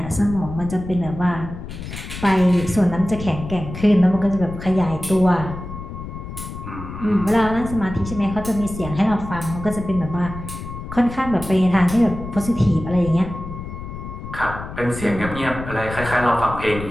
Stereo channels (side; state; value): left; noise; rumble, 10 dB below the sound